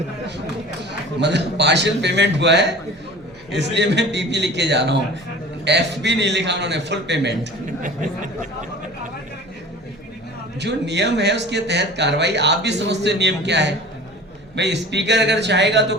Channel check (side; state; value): right; noise; hum, 28 dB below the sound